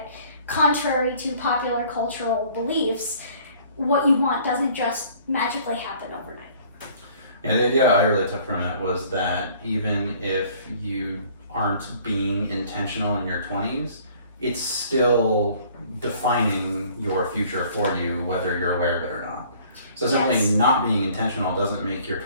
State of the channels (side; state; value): both; inverted; correlation -0.55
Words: contrary to popular cultural beliefs, what you want doesn't just magically happen overnight. Yeah, the idea I really took from it was that even if you aren't being intentional in your 20s, it's still defining your future for you, whether you're aware of it or not. So simply Yes. not being intentional doesn't make your